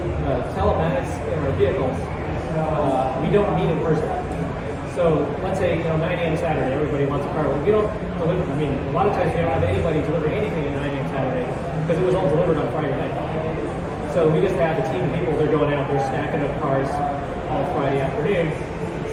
telematics in our vehicles, we don't meet in person. So let's say 9 a.m. Saturday, everybody wants a car. We don't deliver. I mean, a lot of times we don't have anybody delivering anything at 9 a.m. Saturday because it was all delivered on Friday night. So we just have a team of people. They're going out, they're stacking up cars all Friday afternoon.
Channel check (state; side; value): identical; both; correlation 1.00